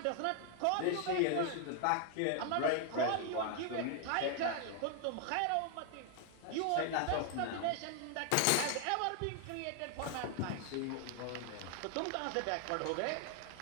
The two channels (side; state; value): both; different; correlation 0.00